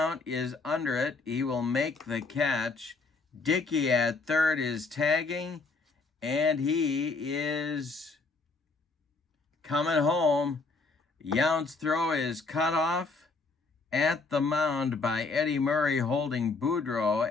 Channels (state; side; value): quieter; right; 3.9 dB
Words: is under it. He will make the catch. Dickey at third is tagging, and he is coming home. Yount's throw is cut off at the mound by Eddie Murray holding Boudreaux